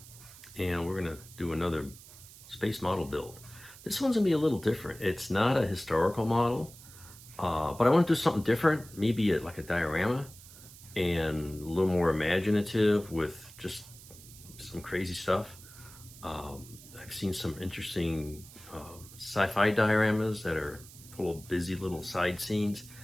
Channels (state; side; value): noise; right; hiss, 19 dB below the sound